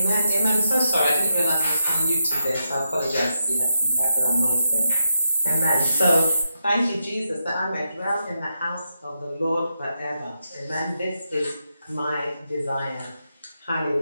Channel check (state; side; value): inverted; both; correlation -0.85